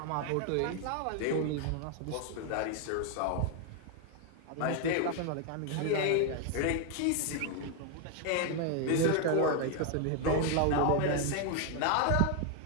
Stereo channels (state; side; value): different; both; correlation 0.01